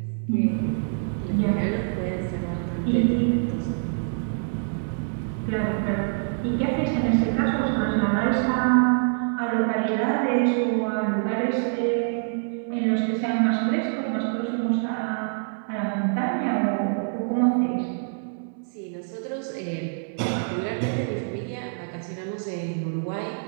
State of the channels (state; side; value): silent; left; digital silence